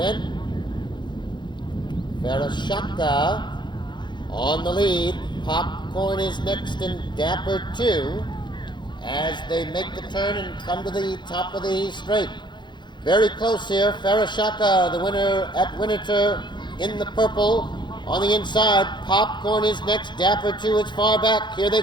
Farashaka on the lead. Popcorn is next and Dapper 2 as they make the turn and come to the top of the straight. Very close here. Farashaka, the winner at Winterthur in the purple. On the inside, Popcorn is next. Dapper 2 is far back. Here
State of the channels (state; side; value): late; right; 0.22 ms